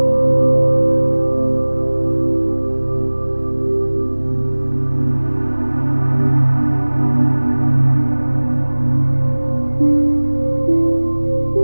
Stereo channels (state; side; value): inverted; both; correlation -1.00